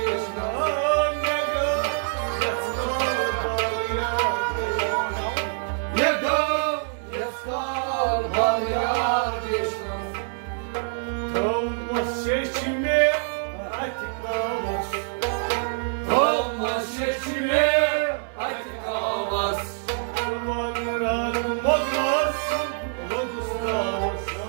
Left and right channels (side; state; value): left; silent; digital silence